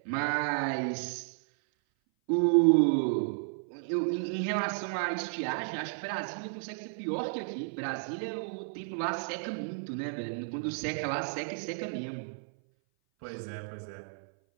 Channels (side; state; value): left; silent; 56 dB below the other